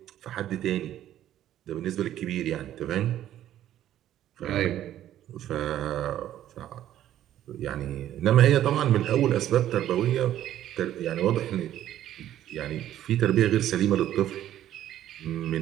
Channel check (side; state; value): left; quieter; 12.1 dB